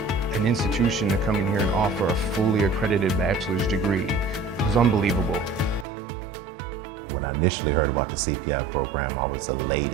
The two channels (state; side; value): drops out; left; at 5.9 s